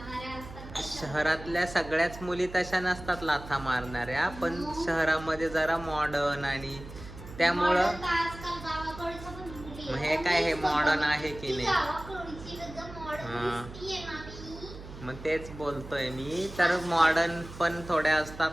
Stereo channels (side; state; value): right; noise; hum, 14 dB below the sound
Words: असतात. शहरातल्या सगळ्याच मुली तशा नसतात लाथा मारणाऱ्या, पण शहरामध्ये जरा मॉडर्न आणि त्यामुळं Modern तर आजकाल गावाकडच्या पण मुली मग आहेत. हे काय, हे मॉडर्न आहे की ती नाही? गावाकडची एकदम हा. modern दिसतीये ना मी. मग तेच बोलतोय मी, तर मॉडर्न पण थोड्या